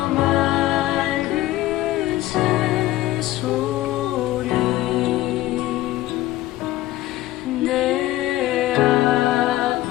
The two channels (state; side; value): quieter; right; 15.9 dB